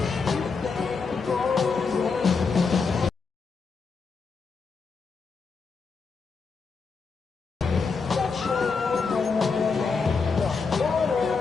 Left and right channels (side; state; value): right; quieter; 4.9 dB